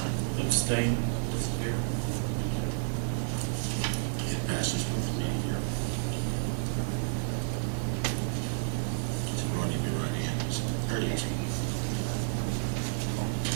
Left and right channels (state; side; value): silent; left; 56 dB below the other